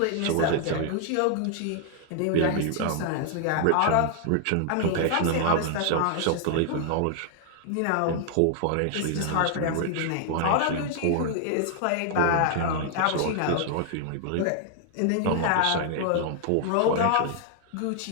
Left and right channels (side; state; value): both; different; correlation 0.00